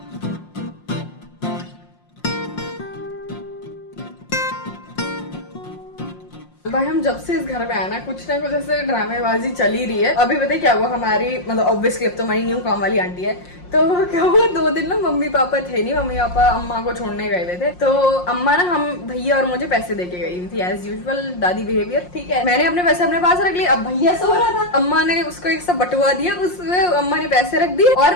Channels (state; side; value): late; right; 5.6 ms